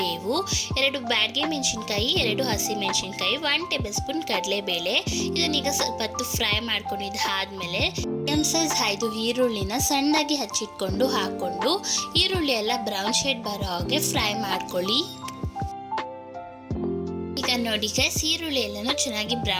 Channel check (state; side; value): identical; both; correlation 1.00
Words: 2 ಬ್ಯಾಡಗೆ ಮೆಣಸಿನ್ಕಾಯಿ, 2 ಹಸಿ ಮೆಣಸಿನ್ಕಾಯಿ, 1 ಟೇಬಲ್ ಸ್ಪೂನ್ ಕಡಲೆಬೇಳೆ. ಇದನ್ನೀಗ ಸ್ವಲ್ಪ ಹೊತ್ತು ಫ್ರೈ ಮಾಡ್ಕೊಂಡಿದ್ದಾದ್ಮೇಲೆ ಸೈಜ್ 5 ಈರುಳ್ಳಿನ ಸಣ್ಣದಾಗಿ ಹಚ್ಚಿಟ್ಕೊಂಡು ಹಾಕೊಂಡು ಈರುಳ್ಳಿ ಎಲ್ಲ ಬ್ರೌನ್ ಶೇಡ್ ಬರೋ ಹಾಗೆ ಫ್ರೈ ಮಾಡ್ಕೊಳ್ಳಿ. ಈಗ ನೋಡಿ ಗೈಸ್, ಈರುಳ್ಳಿ ಎಲ್ಲನೂ ಚೆನ್ನಾಗಿ